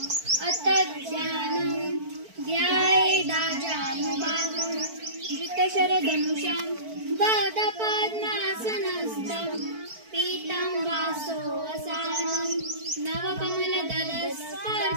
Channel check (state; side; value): late; left; 4.5 ms